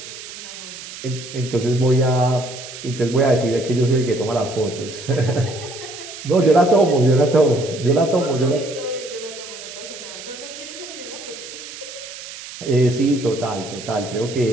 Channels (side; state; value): right; noise; hiss, 13 dB below the sound